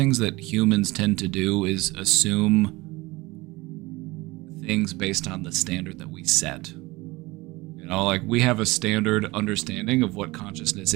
that humans tend to do is assume things based on the standard that we set. You know, like we have a standard understanding of what consciousness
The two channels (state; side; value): quieter; left; 21.8 dB